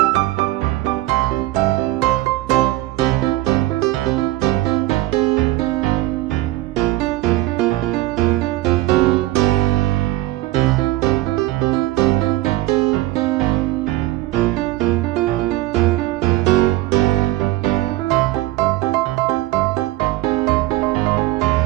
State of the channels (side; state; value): left; quieter; 17.3 dB